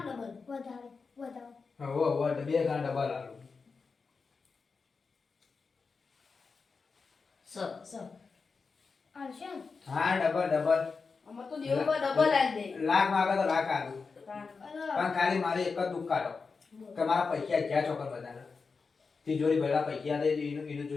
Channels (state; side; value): quieter; right; 4.8 dB